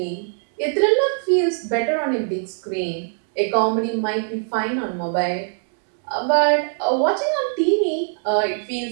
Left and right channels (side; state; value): left; silent; digital silence